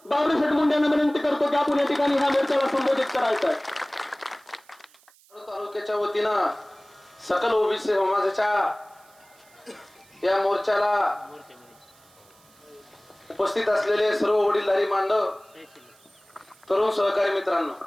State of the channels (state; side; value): noise; right; hiss, 29 dB below the sound